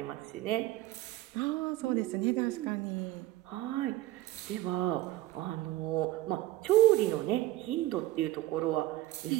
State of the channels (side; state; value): left; quieter; 16.9 dB